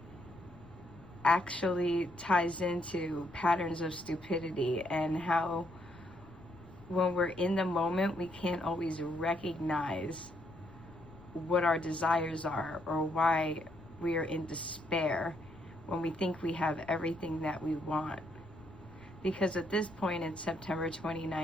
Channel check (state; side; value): noise; left; rumble, 21 dB below the sound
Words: actually ties into patterns of stupidity and how when we're in the moment, we can't always recognize what our desires are or why we are in despair when we think we have everything that we want. Because at this point in September